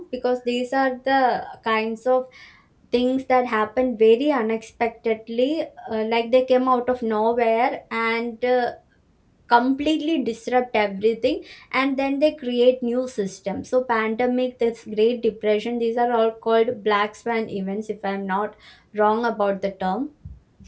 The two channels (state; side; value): identical; both; correlation 1.00